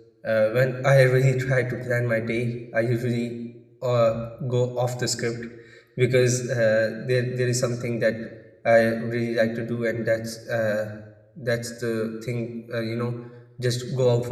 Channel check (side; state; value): both; identical; correlation 1.00